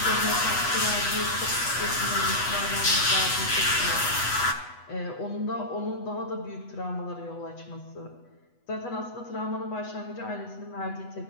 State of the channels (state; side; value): late; right; 8.1 ms